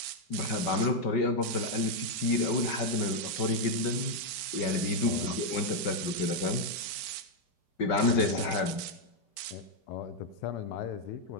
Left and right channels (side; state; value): right; late; 5.3 ms